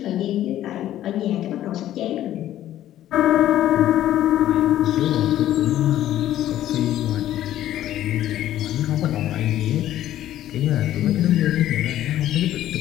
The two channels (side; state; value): right; quieter; 12.8 dB